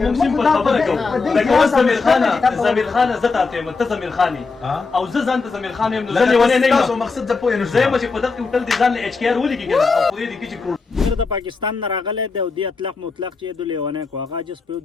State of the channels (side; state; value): right; quieter; 4.3 dB